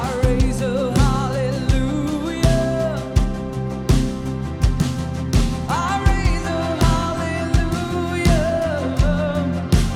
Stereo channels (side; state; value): both; identical; correlation 1.00